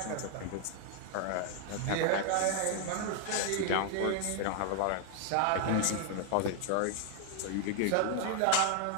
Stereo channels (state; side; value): different; both; correlation 0.00